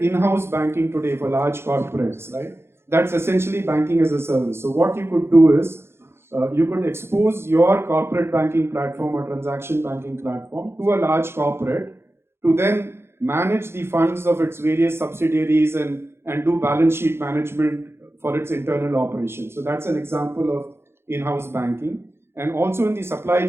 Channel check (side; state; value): left; late; 0.12 ms